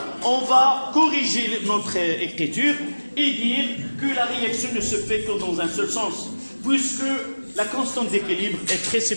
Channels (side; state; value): both; inverted; correlation -1.00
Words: on va corriger notre écriture et dire que la réaction ne se fait que dans un seul sens, puisque la constante d'équilibre est très